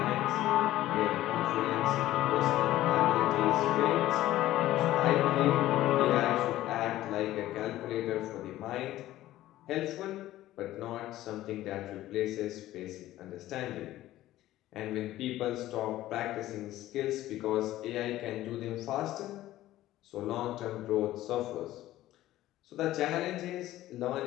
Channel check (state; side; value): quieter; right; 14.9 dB